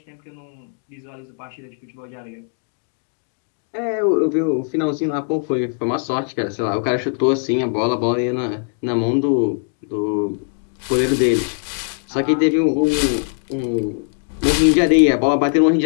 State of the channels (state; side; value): silent; right; 57 dB below the other